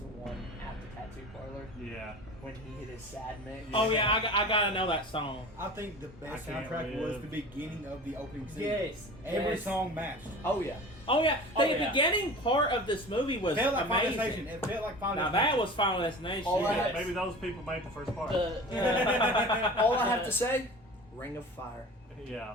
one at the tattoo parlor. Yeah. When he hit his sad mix. Oh yeah, I gotta know that song. I think the best I Can't soundtrack Live. was the beginning of the opening scene. Yes. Every Yes. song matched. Oh yeah. Oh yeah, the yeah. beginning part of this movie was It felt like Final amazing. Destination. It felt like Final Now Destination. that was Final Destination. All I Yeah, had- maybe those people made the first part. All I have to say, Ring of Fire.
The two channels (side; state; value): both; normal; correlation 0.37